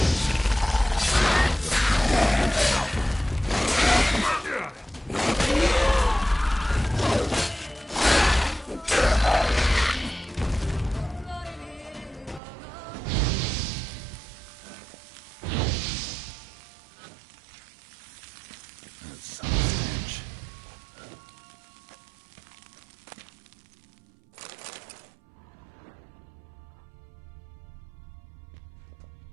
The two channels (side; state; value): left; drops out; at 12.4 s